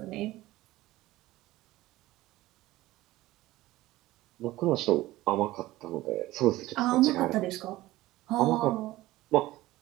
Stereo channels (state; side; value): quieter; left; 17.3 dB